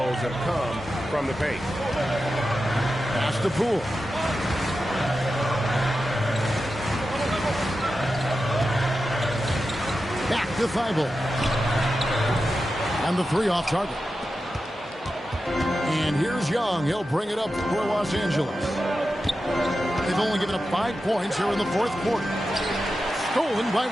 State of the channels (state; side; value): normal; both; correlation 0.91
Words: have come from the paint. Pass to Poole. Back to Thibault. And the 3 off target. And here's Young. He'll bring it up for Los Angeles. They've only given up 5 points here in the 4th quarter. Stolen by